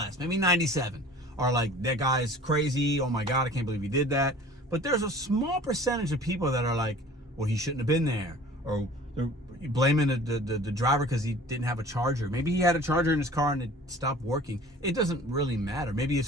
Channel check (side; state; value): both; normal; correlation 0.46